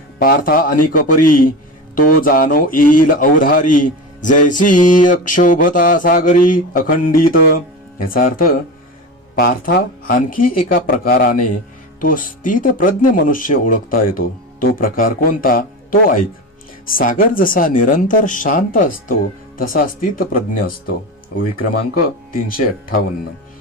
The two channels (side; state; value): both; normal; correlation 0.25